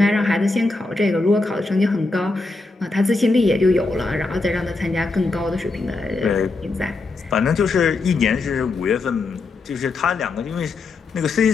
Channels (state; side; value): quieter; right; 3.5 dB